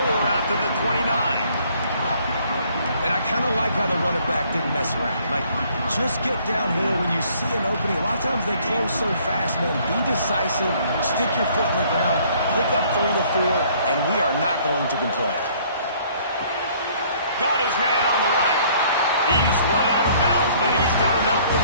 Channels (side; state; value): both; inverted; correlation -0.60